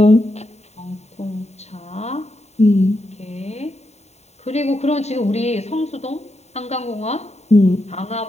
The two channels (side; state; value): right; late; 0.32 ms